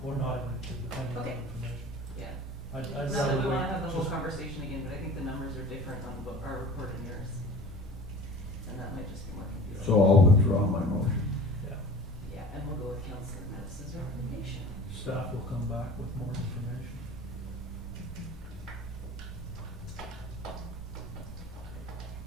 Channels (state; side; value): normal; both; correlation 0.41